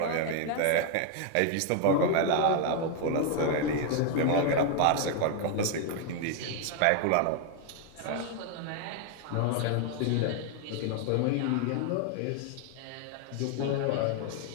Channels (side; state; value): both; different; correlation 0.00